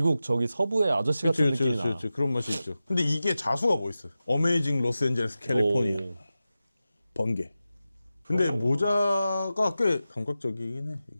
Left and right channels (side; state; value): both; inverted; correlation -0.94